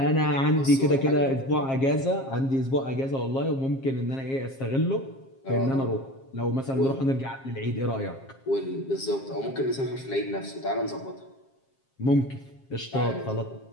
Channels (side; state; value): right; late; 7.5 ms